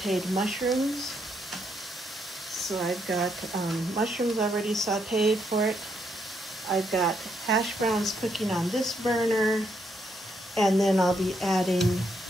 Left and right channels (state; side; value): normal; both; correlation 0.76